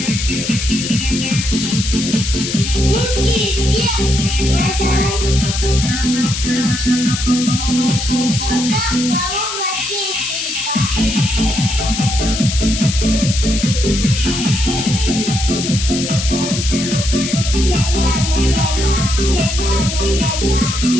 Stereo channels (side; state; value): left; noise; hiss, 5 dB below the sound